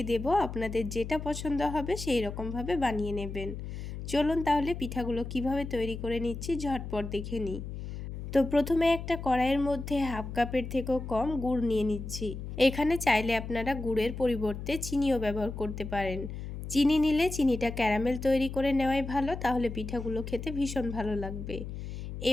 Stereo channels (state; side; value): noise; left; hum, 8 dB below the sound